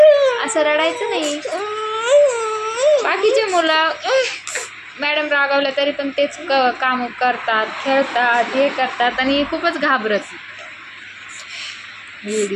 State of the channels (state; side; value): identical; both; correlation 1.00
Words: असं रडायचं नाही. बाकीचे मुलं मॅडम रागावल्या तरी पण तेच काम करतात, खेळतात, हे करतात, आणि खूपच घाबरत